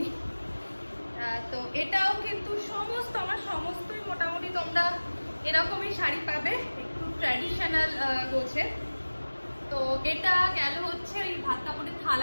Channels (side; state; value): both; inverted; correlation -1.00